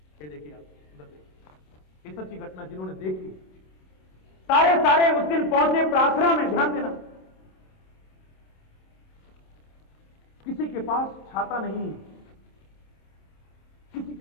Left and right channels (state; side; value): late; right; 27 ms